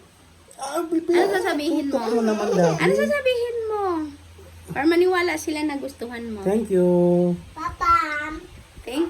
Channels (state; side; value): identical; both; correlation 1.00